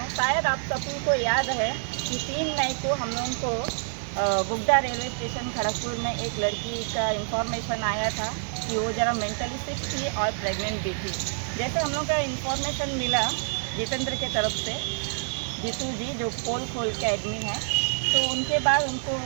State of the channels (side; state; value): left; silent; digital silence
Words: शायद आप सभी को याद है कि 3 मई को हम लोगों को बुगदा रेलवे स्टेशन खड़गपुर में एक लड़की का इंफॉर्मेशन आया था कि वो ज़रा मेंटली सिक थी और प्रेग्नेंट भी थी। जैसे हम लोग का इंफॉर्मेशन मिला जितेंद्र के तरफ से, जीतू जी जो पोल खोल के एडमिन है, तो उनके बाद उनको